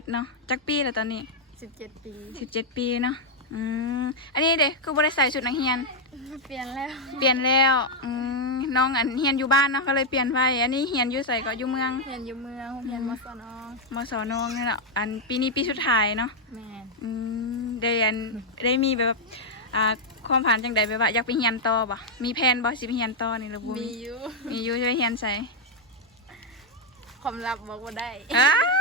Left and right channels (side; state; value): both; normal; correlation 0.00